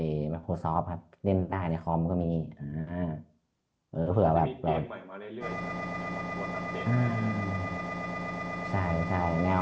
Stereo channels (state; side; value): identical; both; correlation 1.00